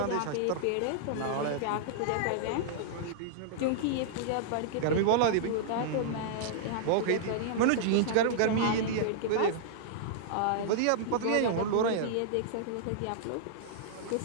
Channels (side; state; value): both; different; correlation -0.01